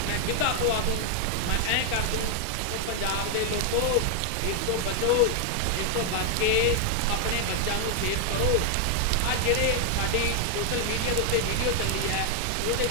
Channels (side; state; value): both; different; correlation 0.00